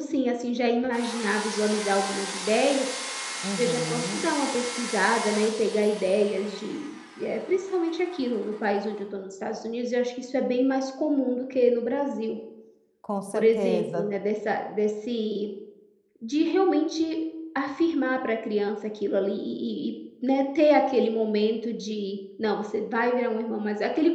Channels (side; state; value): both; identical; correlation 1.00